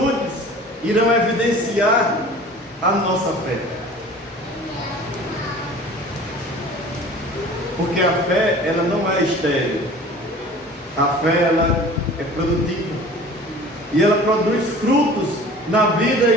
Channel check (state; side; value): normal; both; correlation 0.44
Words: irão evidenciar a nossa fé. Porque a fé, ela não é estéril. A fé, ela é produtiva. E ela produz frutos na vida